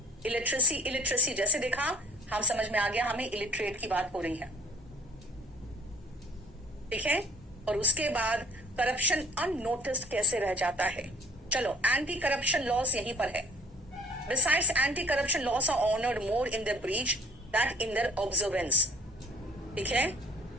इलिटरेसी, इलिटरेसी जैसे देखा, हम समझ में आ गया हमें इलिटरेट की बात हो रही है, ठीक है। और उसके बाद करप्शन अननोटिस्ड कैसे रह जाता है। चलो, एंटी करप्शन लॉस यहीं पर है। Besides, anti-corruption laws are honored more in their breach than in their observance. ठीक है?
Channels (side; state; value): both; normal; correlation 0.54